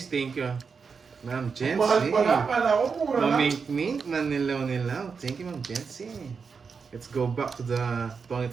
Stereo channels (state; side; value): quieter; left; 5.5 dB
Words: thank you. Ma'am Jency. Mahal pala, pala ko, mura lang. Mamink-mink, manilaw-nilaw. Thank you, Ma'am Jency. Let's go back to the